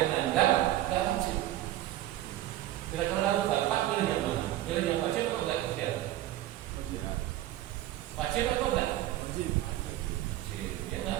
menganggap tidak wajib. Kira-kira kalau bapak pilih yang mana? Pilih yang wajib atau enggak ikhtiar? Wajib atau enggak? Wajib. Ya enggak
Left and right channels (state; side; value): quieter; left; 14.3 dB